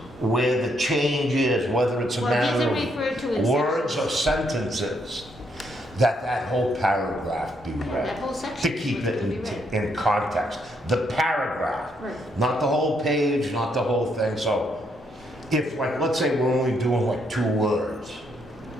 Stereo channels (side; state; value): both; normal; correlation 0.74